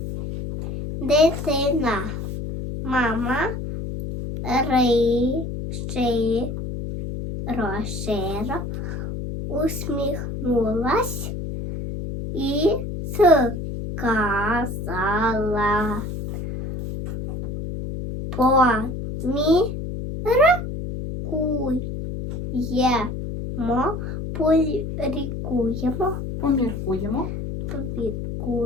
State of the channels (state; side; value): noise; left; hum, 5 dB below the sound